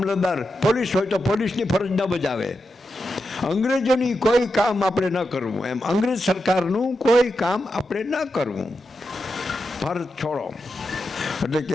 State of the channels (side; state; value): both; normal; correlation 0.88